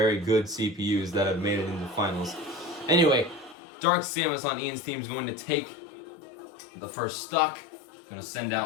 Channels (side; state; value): right; drops out; at 3.6 s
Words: good CPUs that have made it into finals. Anyway, Dark Samus on Ian's team is going to take the first stock. Going to send